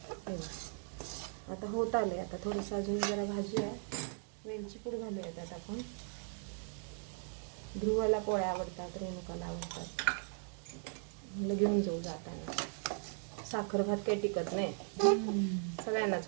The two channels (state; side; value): silent; left; 52 dB below the other